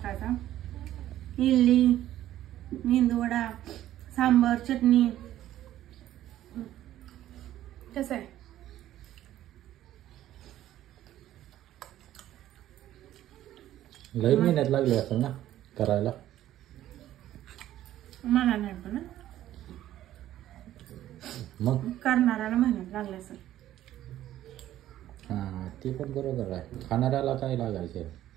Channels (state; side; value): quieter; left; 13.0 dB